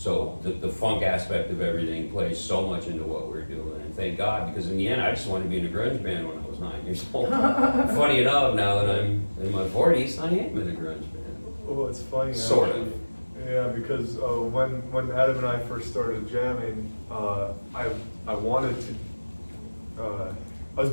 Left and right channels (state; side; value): inverted; both; correlation -1.00